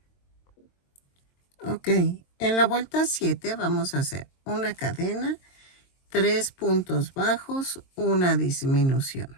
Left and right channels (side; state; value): right; late; 22 ms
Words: Ok, en la vuelta 7 vamos a hacer una cadena, 3 puntos bajos, una disminución.